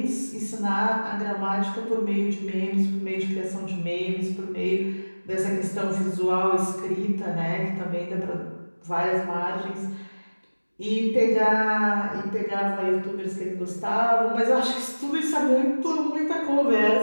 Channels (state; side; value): inverted; both; correlation -1.00